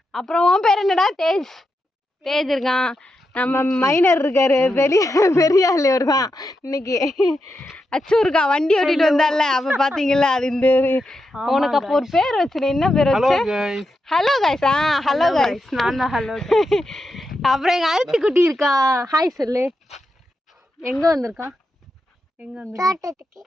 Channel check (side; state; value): both; normal; correlation 0.86